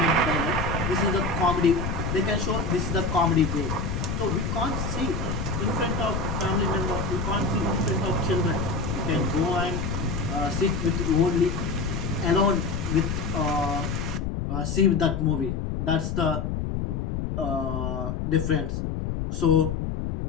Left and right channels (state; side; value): noise; left; rumble, 2 dB below the sound